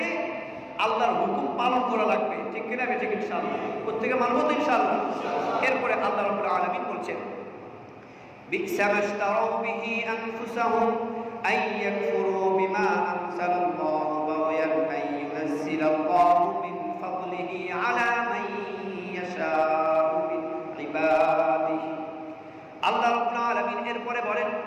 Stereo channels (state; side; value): identical; both; correlation 1.00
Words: আল্লাহর হুকুম পালন করা লাগবে। ঠিক কিনা? ঠিক ইনশাআল্লাহ। প্রত্যেকে মানব তো ইনশাআল্লাহ। এরপরে আল্লাহ রাব্বুল আলামিন বলছেন, বি'সা মাশতারাউ বিহি আনফুসাহুম আন ইয়াকফুরু বিমা আনজালাল্লাহু বাগয়ান আন ইউনাজ্জিলাল্লাহু মিন ফাদলিহি আলা মান ইয়াশাউ মিন ইবাদিহি। আল্লাহ রাব্বুল আলামিন এরপরে বলেন,